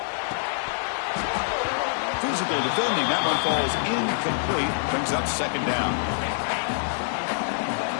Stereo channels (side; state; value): right; silent; digital silence